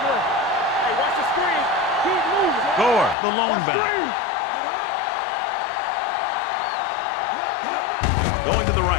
Hey, watch the screen. Gore, the lone back. Going to the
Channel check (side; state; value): right; drops out; at 3.2 s